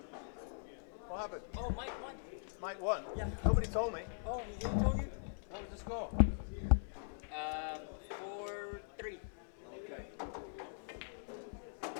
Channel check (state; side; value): silent; right; digital silence